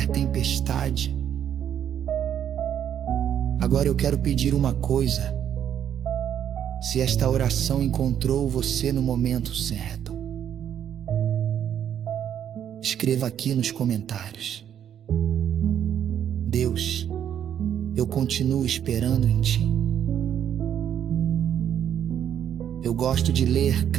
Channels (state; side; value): quieter; left; 9.5 dB